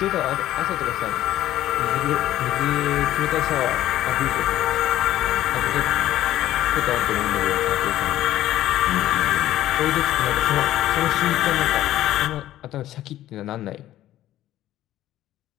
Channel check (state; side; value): quieter; right; 13.7 dB